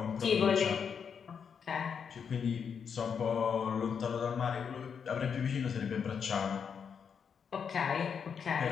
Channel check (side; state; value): right; quieter; 6.8 dB